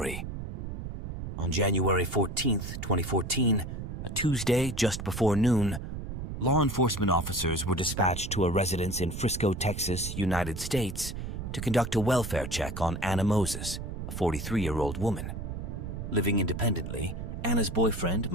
On January 14th, 2014, a Tuesday just before noon, law enforcement officers were dispatched to a residence in Frisco, Texas, United States, to conduct a welfare check on Anna Moses, a 43-year-old woman. Living independently, Anna's boyfriend,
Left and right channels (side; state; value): right; noise; rumble, 6 dB below the sound